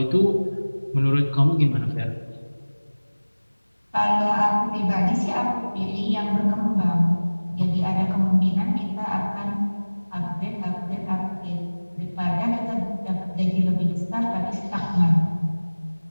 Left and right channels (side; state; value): both; inverted; correlation -1.00